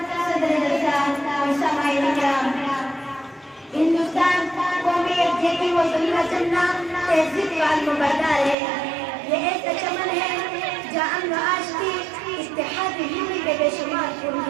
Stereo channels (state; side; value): drops out; left; at 8.6 s